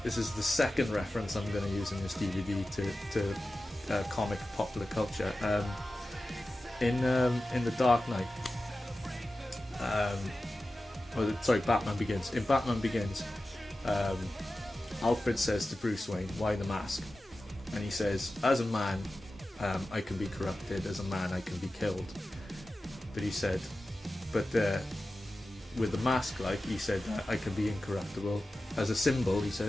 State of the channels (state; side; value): normal; both; correlation 0.94